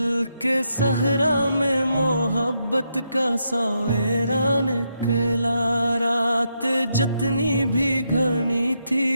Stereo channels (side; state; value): both; inverted; correlation -0.80